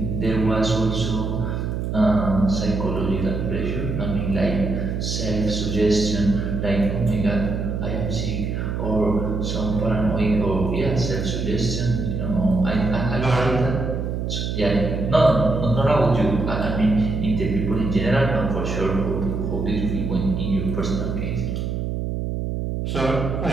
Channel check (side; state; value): right; noise; hum, 2 dB below the sound